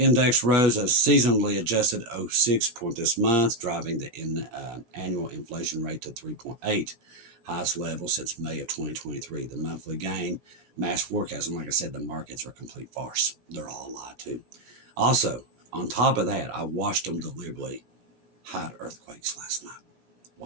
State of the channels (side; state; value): left; late; 17 ms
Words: rose a seasonally adjusted 0.6 point this month, driving the annual inflation rate to 3.8, highest level since May of 2023. The monthly gain matched forecast, and like I said, the markets are a complete farce. They're all a lie too. Also, on top of that, I watched them deliberately hide earthquakes last night.